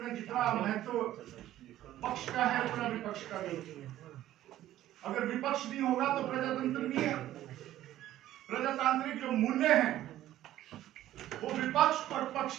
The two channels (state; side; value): quieter; left; 13.5 dB